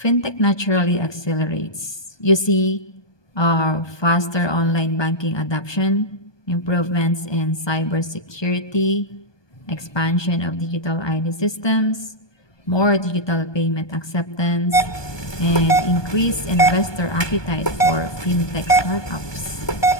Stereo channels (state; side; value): late; right; 1.2 ms